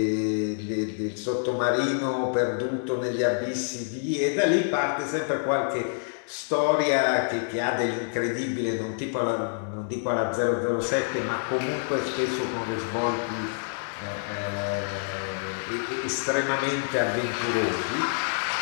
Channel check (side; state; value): right; silent; digital silence